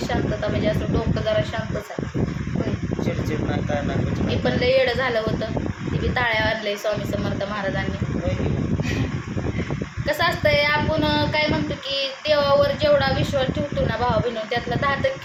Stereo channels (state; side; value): identical; both; correlation 1.00